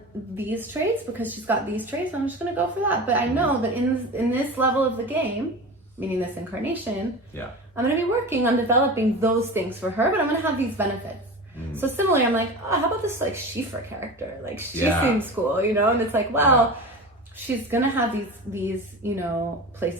these traits because she's got these traits. I'm just gonna go for that. But I know that in this level of the game, meaning this incarnation, I'm gonna be working on developing those things for her, but I'm gonna have these benefits. So similarly, I'm like, oh, how about this like Sheefra character? Like, she seems cool, you know? And it's like, well, she's gonna have these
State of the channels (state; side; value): normal; both; correlation 0.30